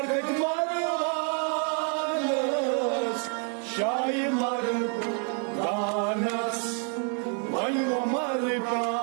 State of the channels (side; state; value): left; quieter; 39.8 dB